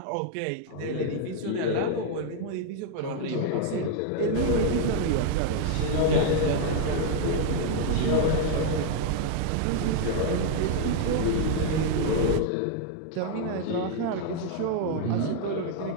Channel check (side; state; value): both; different; correlation 0.00